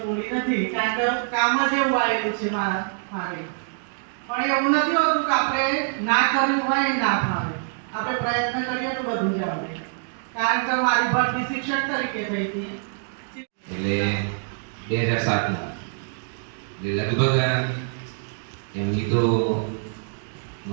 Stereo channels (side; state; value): left; silent; digital silence